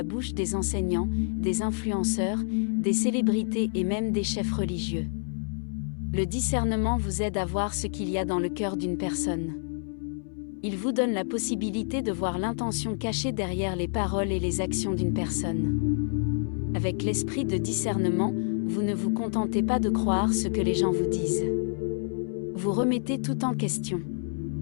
bouche des enseignants, des influenceurs, des célébrités et même des chefs religieux. Le discernement vous aide à voir ce qu'il y a dans le cœur d'une personne. Il vous donne la possibilité de voir l'intention cachée derrière les paroles et les actions d'une personne. Avec l'esprit de discernement, vous ne vous contentez pas de croire ce que les gens vous disent. Vous remettez tout en question.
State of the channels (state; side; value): silent; right; 59 dB below the other